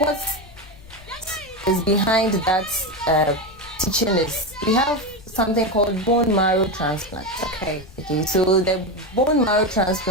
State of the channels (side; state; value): left; noise; rumble, 21 dB below the sound